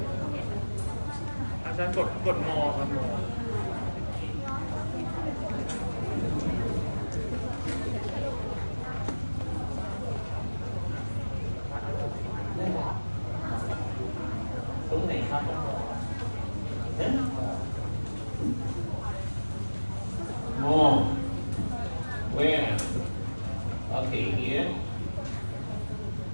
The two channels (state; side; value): inverted; both; correlation -1.00